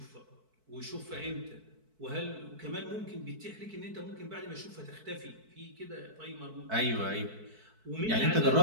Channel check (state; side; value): late; left; 4.6 ms